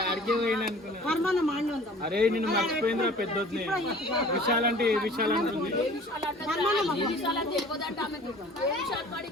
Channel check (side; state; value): both; normal; correlation 0.47